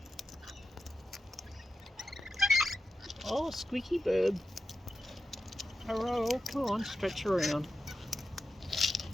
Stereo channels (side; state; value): both; normal; correlation 0.90